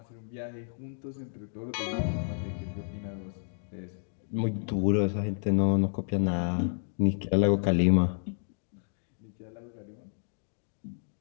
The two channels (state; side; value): silent; right; digital silence